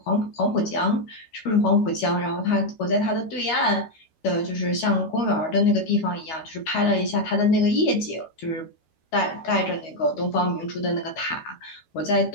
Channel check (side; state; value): right; late; 12 ms